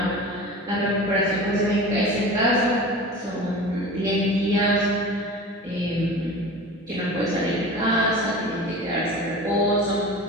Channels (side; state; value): both; normal; correlation 0.35